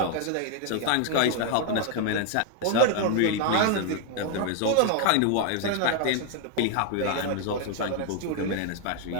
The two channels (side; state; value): both; different; correlation 0.00